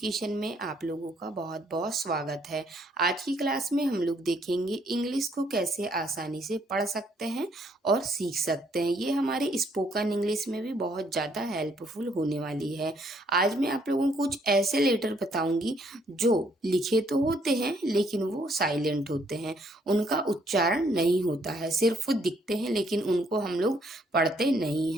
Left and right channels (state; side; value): normal; both; correlation 0.68